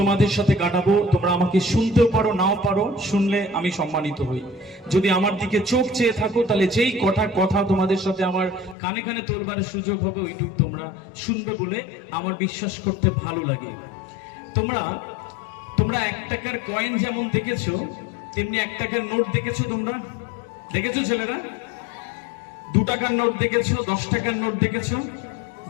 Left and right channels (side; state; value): right; drops out; at 8.8 s